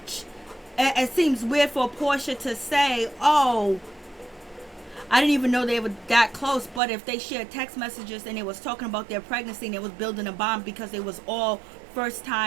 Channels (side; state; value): left; drops out; at 6.8 s